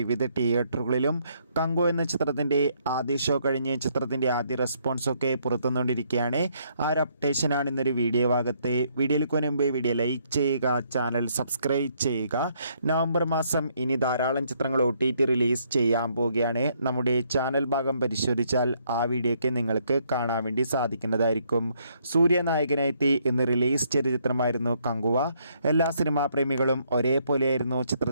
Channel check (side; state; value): both; inverted; correlation -0.70